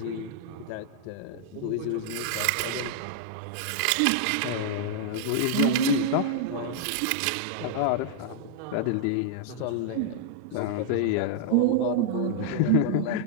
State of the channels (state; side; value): different; both; correlation -0.01